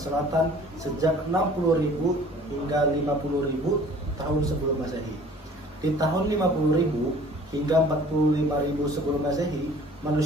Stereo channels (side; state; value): both; normal; correlation 0.50